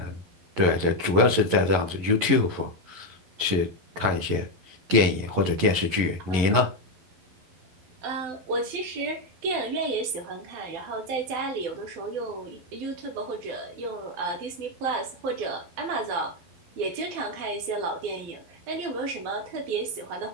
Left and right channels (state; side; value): late; left; 11 ms